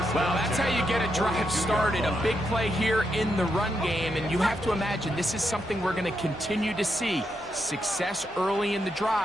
Well, that's how you get a drive started. A big play here in the run game, and you have to imagine this is something we're going to continue to see. Success early in the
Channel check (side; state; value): left; noise; hum, 27 dB below the sound